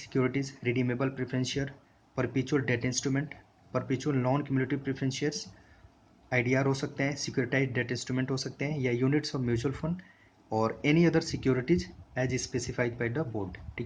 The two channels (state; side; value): identical; both; correlation 1.00